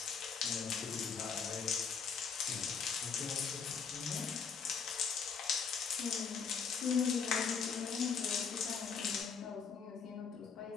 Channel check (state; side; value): quieter; right; 6.1 dB